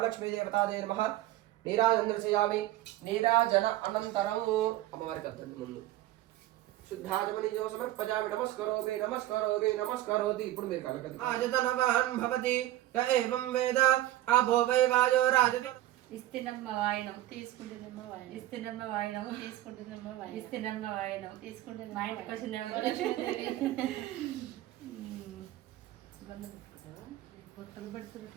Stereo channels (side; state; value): left; quieter; 15.0 dB